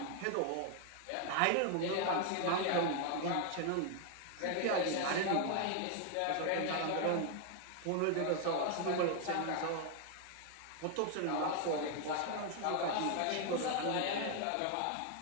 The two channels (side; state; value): both; different; correlation 0.00